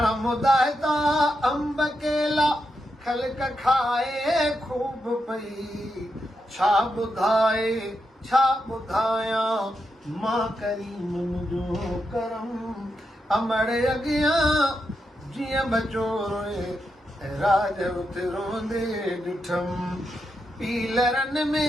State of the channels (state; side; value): normal; both; correlation 0.85